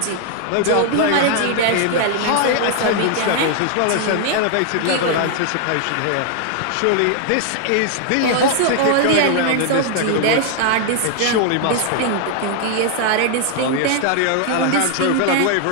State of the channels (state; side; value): different; both; correlation 0.00